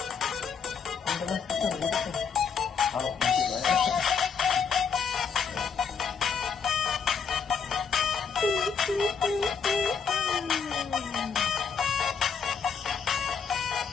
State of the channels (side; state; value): right; quieter; 6.2 dB